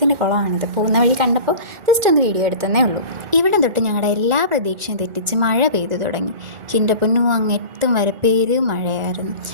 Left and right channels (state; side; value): late; left; 1.4 ms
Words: കുളമാണിത്. പോകുന്ന വഴി കണ്ടപ്പോൾ ജസ്റ്റ് ഒന്ന് വീഡിയോ എടുത്തതേ ഉള്ളൂ. ഇവിടെ തൊട്ട് ഞങ്ങളുടെ എല്ലാ പ്രതീക്ഷയും തെറ്റിച്ച് മഴ പെയ്തു തുടങ്ങി. എൻ്റെ പൊന്നു അങ്ങെത്തും വരെ മഴയായിരുന്നു.